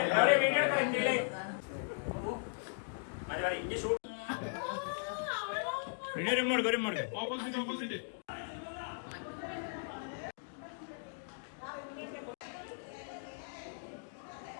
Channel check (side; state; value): right; silent; digital silence